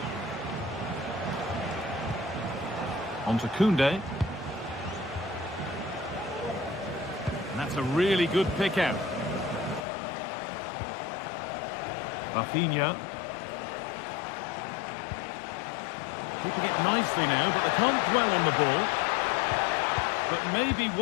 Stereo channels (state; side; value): drops out; right; at 9.9 s